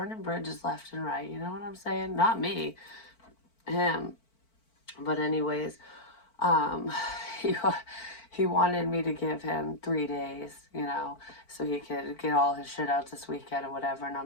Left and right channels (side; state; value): right; late; 4.5 ms